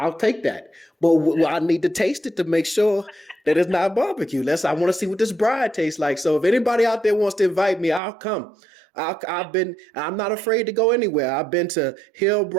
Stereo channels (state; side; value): drops out; left; at 8.0 s